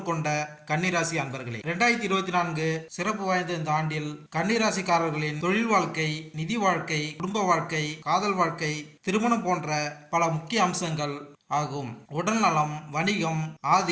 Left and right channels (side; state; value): both; identical; correlation 1.00